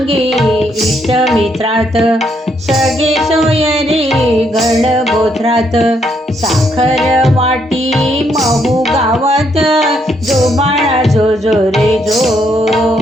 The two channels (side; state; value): both; normal; correlation 0.74